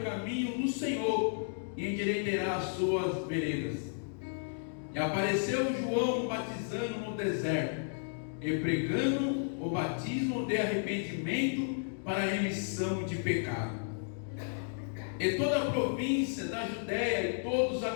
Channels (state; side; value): silent; right; digital silence